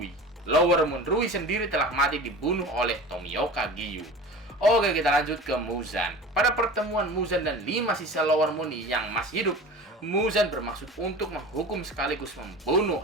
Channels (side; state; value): both; normal; correlation 0.36